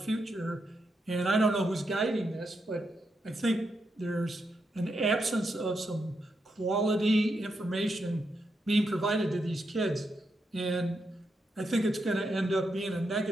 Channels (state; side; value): normal; both; correlation 0.83